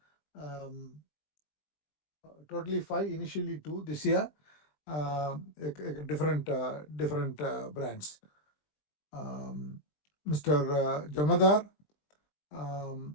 Totally 5, initially 2 this year. Different brands. Mr. Jamadar,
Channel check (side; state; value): right; late; 20 ms